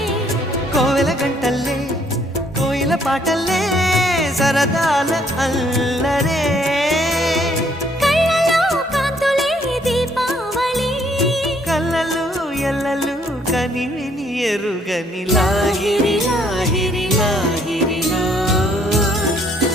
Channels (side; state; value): both; normal; correlation 0.66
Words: కోవెల గంటల్లే కోయిల పాటల్లే సరదాల అల్లరే ఎల్లలు కనివిని ఎరుగని లాహిరి లాహిరి లాహిరిలో